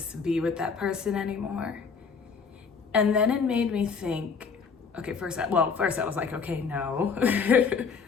be with that person anymore. And then it made me think, okay, first I was like, okay, no,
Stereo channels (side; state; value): right; quieter; 5.6 dB